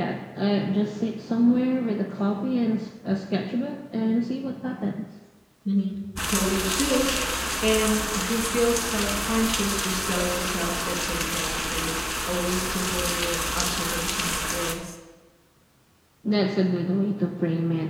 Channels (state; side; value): identical; both; correlation 1.00